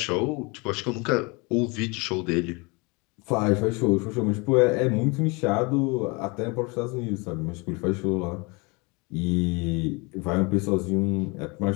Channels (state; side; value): quieter; right; 28.4 dB